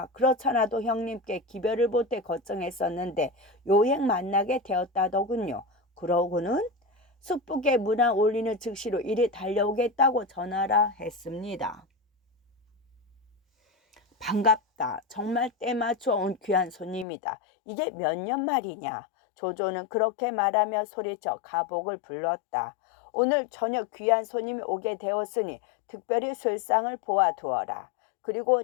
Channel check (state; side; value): drops out; right; at 17.1 s